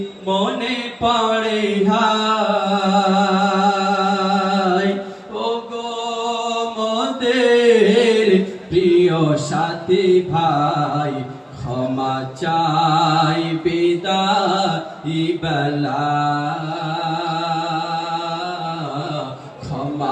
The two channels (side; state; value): both; identical; correlation 1.00